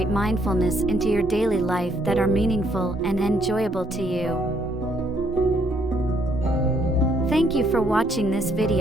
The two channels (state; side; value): normal; both; correlation 0.69